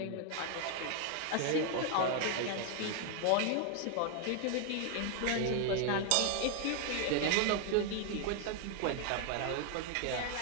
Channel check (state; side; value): different; both; correlation 0.00